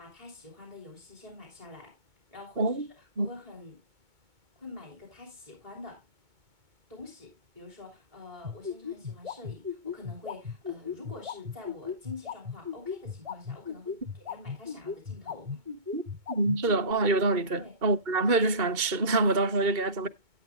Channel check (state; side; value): late; left; 2.2 ms